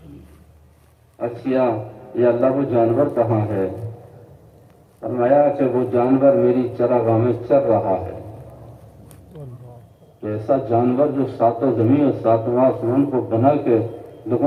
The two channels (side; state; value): both; identical; correlation 1.00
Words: اچھا یہ اللہ وہ جانور کہاں ہے؟ فرمایا کہ وہ جانور میری چراگاہ میں چر رہا ہے۔ ایسا جانور جو ساتوں زمین اور ساتواں آسمان کو بنا کے